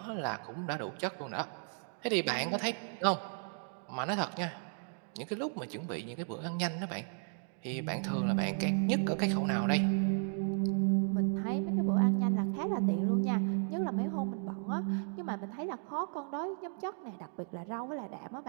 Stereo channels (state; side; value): silent; left; 55 dB below the other